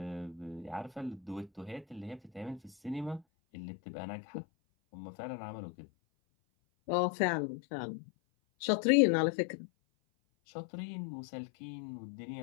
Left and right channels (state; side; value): drops out; right; at 3.2 s